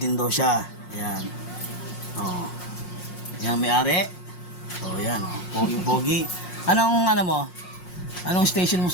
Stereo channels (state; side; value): late; right; 5.5 ms